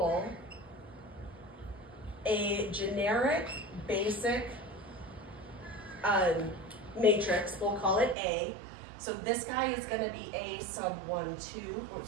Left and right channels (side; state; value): left; drops out; at 8.2 s